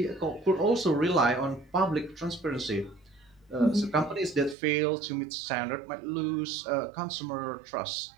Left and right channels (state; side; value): drops out; left; at 4.5 s